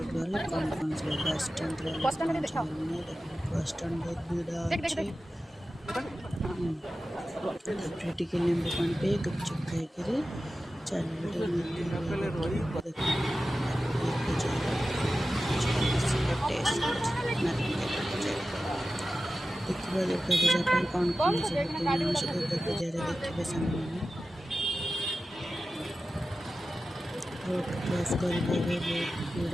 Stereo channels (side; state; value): both; normal; correlation 0.94